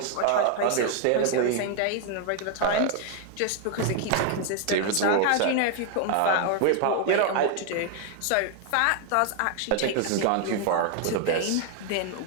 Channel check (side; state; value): both; different; correlation 0.00